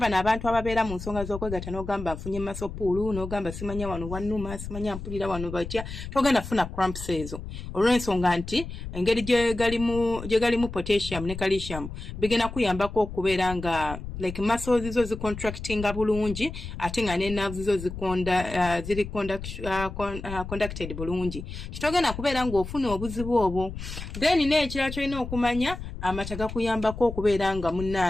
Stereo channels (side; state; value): left; noise; rumble, 9 dB below the sound